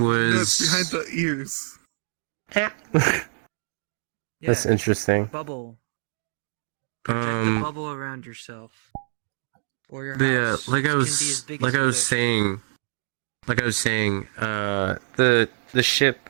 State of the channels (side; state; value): left; silent; digital silence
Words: it's behind the ears. That's Yeah, interesting. bubble. Protect the bubble around yourself. Or your But yeah, house. like I It can be as was big like as I you was wish. saying, the ship